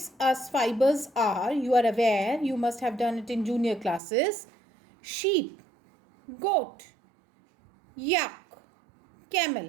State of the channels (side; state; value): left; drops out; at 4.0 s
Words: us fibers are, you are aware, you must have done it in junior classes, sheep, goat, yak,